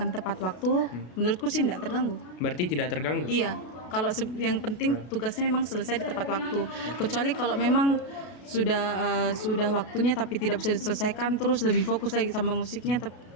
tepat waktu, menurutku sih tidak terganggu. Berarti tidak terganggu? Iya, kalau yang penting tugasnya memang selesai di tepat waktu. Kecuali kalau memang sudah waktunya tapi tidak bisa diselesaikan, terus lebih fokus lagi sama musiknya,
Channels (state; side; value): late; right; 32 ms